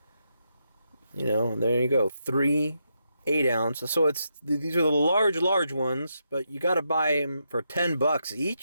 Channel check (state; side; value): inverted; both; correlation -0.82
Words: There you go. 3 8 ounce. So these are the large ones, but you got to buy them for $10